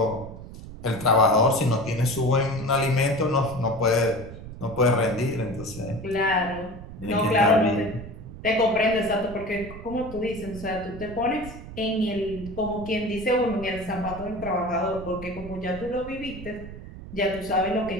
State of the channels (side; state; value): right; noise; rumble, 13 dB below the sound